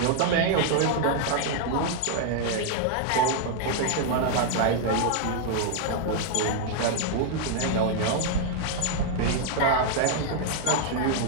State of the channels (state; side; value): different; both; correlation 0.00